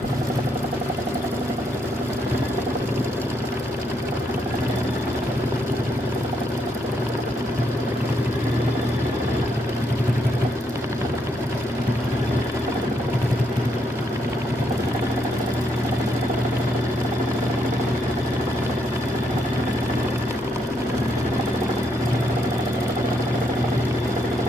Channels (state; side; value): normal; both; correlation 0.76